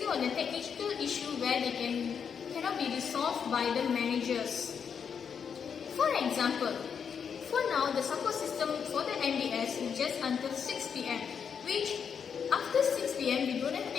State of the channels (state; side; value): quieter; right; 6.9 dB